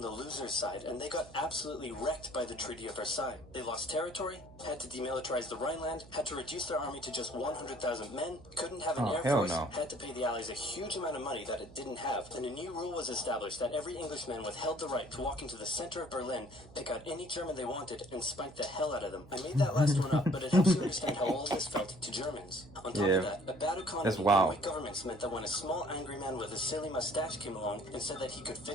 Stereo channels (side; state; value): right; noise; hum, 20 dB below the sound